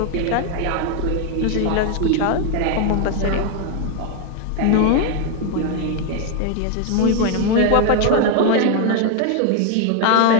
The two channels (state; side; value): different; both; correlation 0.00